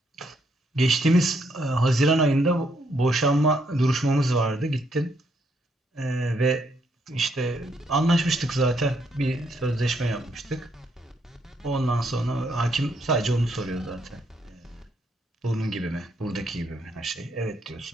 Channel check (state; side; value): normal; both; correlation 0.74